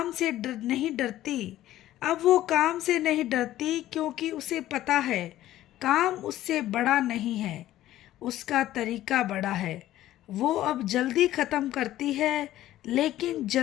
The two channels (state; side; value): quieter; right; 14.0 dB